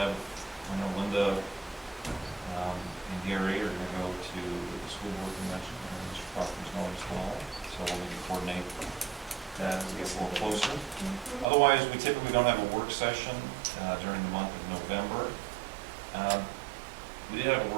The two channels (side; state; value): left; drops out; at 11.5 s